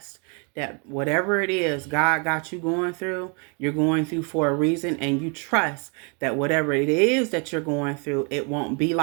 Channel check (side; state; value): left; quieter; 35.7 dB